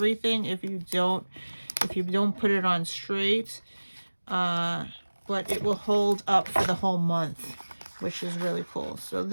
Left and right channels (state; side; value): inverted; both; correlation -1.00